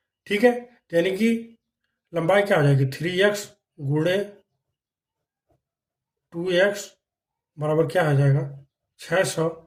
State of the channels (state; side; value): identical; both; correlation 1.00